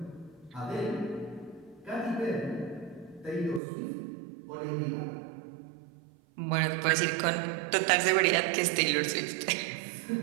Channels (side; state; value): left; drops out; at 3.6 s